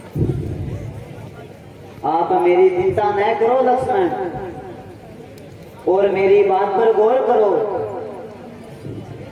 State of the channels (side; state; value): both; identical; correlation 1.00